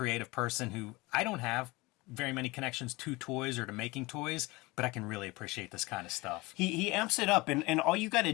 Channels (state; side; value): quieter; right; 22.9 dB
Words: person who I don't have very many connections to toys or to making toys, but I can really appreciate this kind of stuff. He amps it up, and all you got to